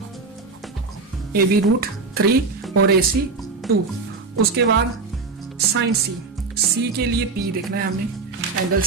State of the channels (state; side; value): quieter; left; 4.3 dB